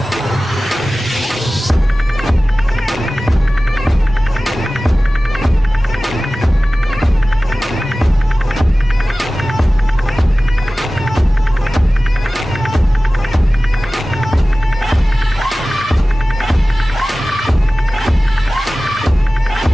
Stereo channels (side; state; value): both; normal; correlation 0.97